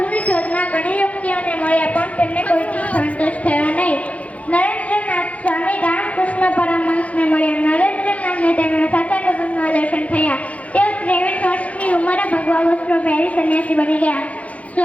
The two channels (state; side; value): late; right; 0.067 ms